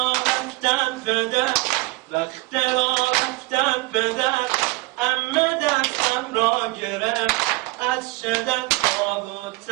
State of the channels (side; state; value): left; quieter; 23.1 dB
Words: رفتم پدر، وقت را رفتم پدر، عمه دستم را گرفت، از شدت خواب و